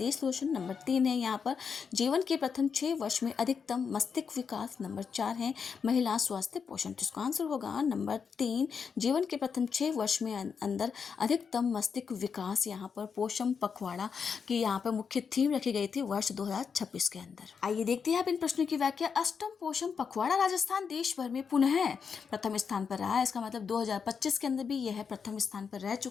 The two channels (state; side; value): quieter; right; 6.2 dB